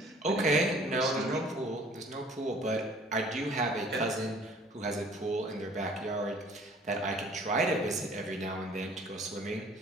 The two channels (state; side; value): normal; both; correlation 0.52